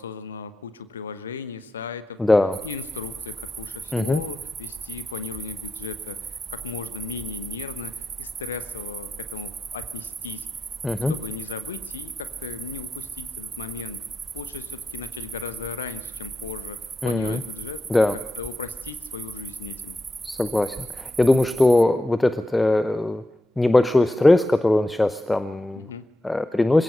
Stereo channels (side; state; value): both; normal; correlation 0.89